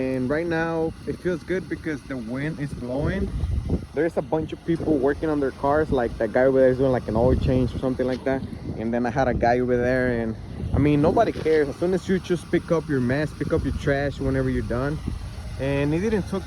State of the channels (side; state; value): both; identical; correlation 1.00